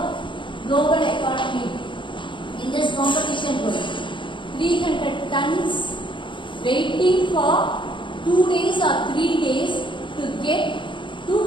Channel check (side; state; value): right; late; 0.24 ms